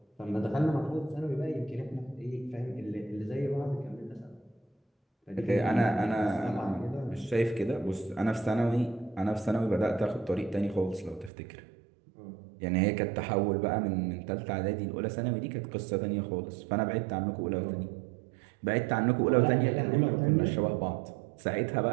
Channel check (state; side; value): drops out; left; at 11.3 s